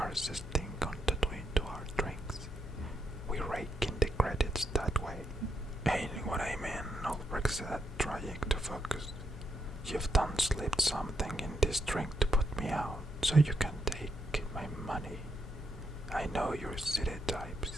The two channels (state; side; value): noise; left; hum, 13 dB below the sound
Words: thing on the Twin to our drinks. We rake in the credits that way. Ain't what I mean, Ulbricht said, trying to focus. You've done slipped something in this drink to put me out, so you can take my money. I know your city types.